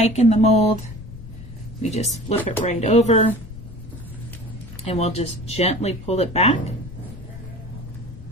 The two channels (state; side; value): noise; left; rumble, 15 dB below the sound